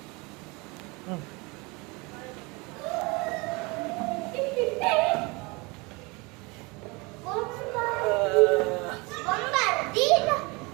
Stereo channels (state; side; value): quieter; left; 26.7 dB